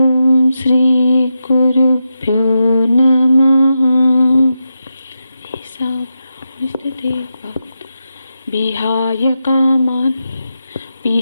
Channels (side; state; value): both; inverted; correlation -0.88